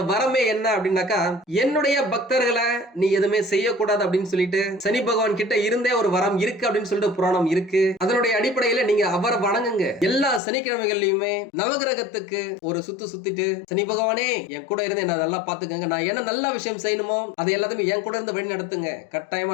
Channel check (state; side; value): drops out; right; at 10.4 s